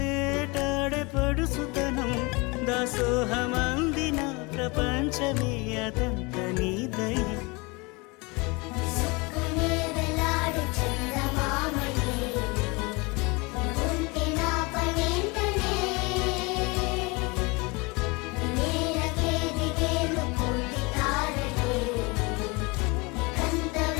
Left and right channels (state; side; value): quieter; right; 26.9 dB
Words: పడుసుతనం దాసోహమందిన ప్రపంచమే అదంత నీదై విసుక్కునే వెలాడు చందమామయే నువ్వుంటే నా పనేంటనే ఈ నేలకే దిగేను కోటి తారలే ఇకంత